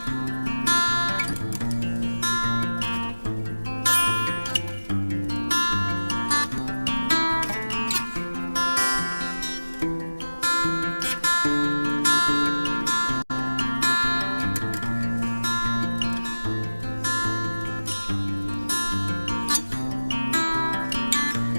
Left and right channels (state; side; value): inverted; both; correlation -1.00